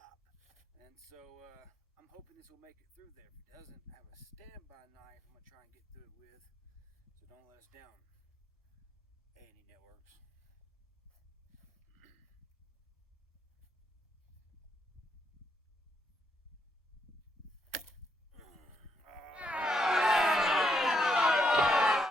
And so I'm hoping this will make it through there. If it doesn't, I have a standby knife I'm going to try and get through it with, so don't let us down, A&E Networks.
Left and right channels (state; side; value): normal; both; correlation 0.77